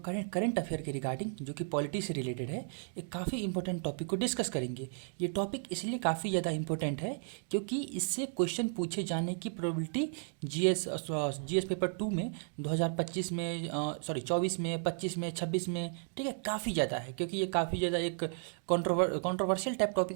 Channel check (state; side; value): silent; left; 55 dB below the other